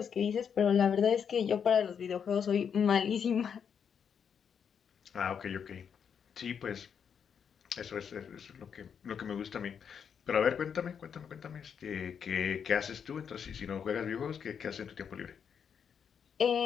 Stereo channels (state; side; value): quieter; right; 7.3 dB